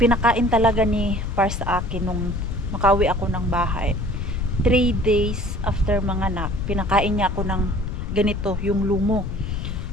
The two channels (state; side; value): noise; left; rumble, 4 dB below the sound